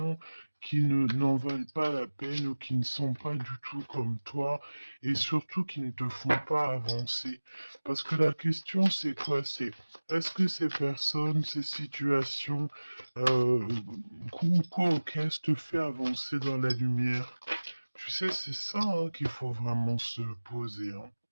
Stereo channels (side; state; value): both; inverted; correlation -1.00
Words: qui n'en valent pas la peine ou qui ne sont pas du tout comme toi et surtout qui ne te font pas avancer? Parce que la question, c'est quoi? C'est est-ce que ces personnes, ces situations, qu'est-ce te fait avancer dans la lumière? Tu sais, c'est ça hein, qu'il faut vraiment se poser. Hein.